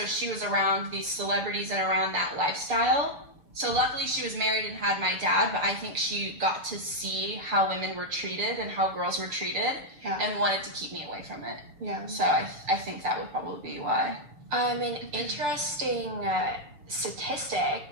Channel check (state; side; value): late; left; 7.2 ms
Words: she was around these celebrities and around that lifestyle. So luckily she was married and had my dad, but I think she got to see how women were treated and how girls were treated and wanted to keep me away from it. Yeah. So I think that would probably be why. An interesting statistic